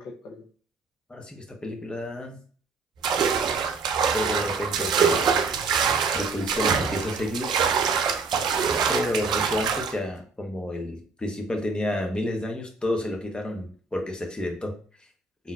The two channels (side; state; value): left; quieter; 3.8 dB